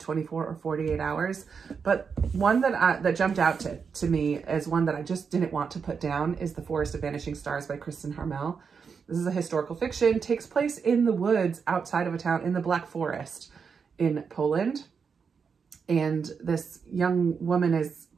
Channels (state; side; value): quieter; left; 6.0 dB